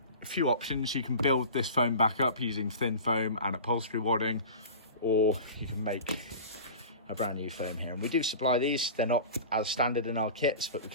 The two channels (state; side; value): inverted; both; correlation -0.35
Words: a few options. You can build this foam back up using thin foam and upholstery wadding, or you can make a brand new foam here, and we do supply these. They're not as standard in our kits, but we